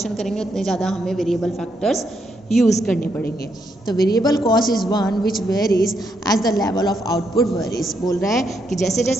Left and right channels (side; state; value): both; normal; correlation 0.78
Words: करेंगे उतने ज़्यादा हमें वेरिएबल फैक्टर्स यूज़ करने पड़ेंगे। तो variable cost is one which varies as the level of output varies. बोल रहा है कि जैसे